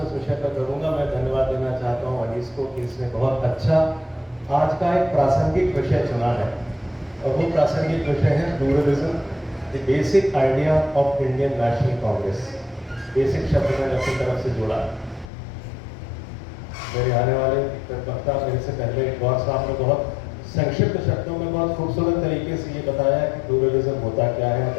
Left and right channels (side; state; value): right; drops out; at 15.2 s